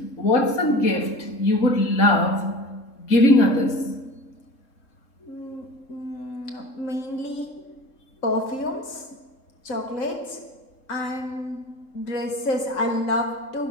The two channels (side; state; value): right; late; 3.7 ms